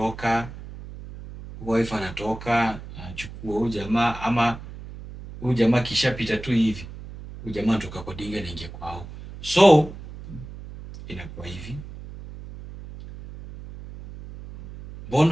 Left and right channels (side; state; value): right; noise; hum, 13 dB below the sound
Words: Wife anatoka, anachukua huyu jamaa, ama huyu jamaa kishapita tu hivi. Huyu jamaa anatoka kwa dinga na ingia kwao. So inakuwa hivi.